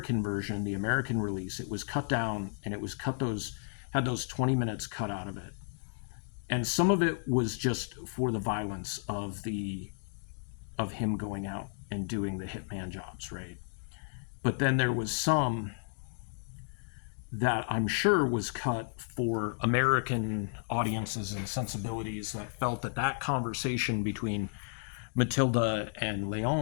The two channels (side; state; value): right; silent; digital silence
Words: version, the American release, it was cut down, and it was had those 20 minutes cut out of it. And some of it was just for the violence of him going out and doing the hitman jobs, right? But then there was some that I'm sure was cut for American audiences and sensibilities that felt that that conversation between Matilda and